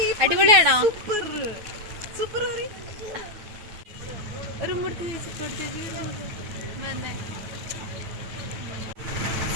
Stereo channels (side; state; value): left; late; 9.1 ms